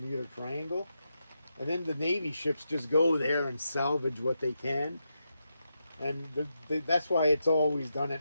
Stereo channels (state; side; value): inverted; both; correlation -0.85